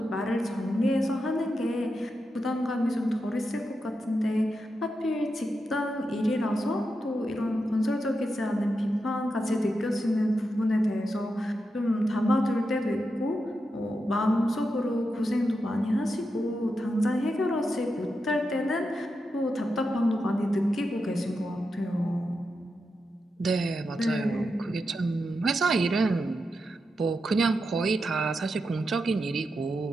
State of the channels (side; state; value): both; normal; correlation 0.87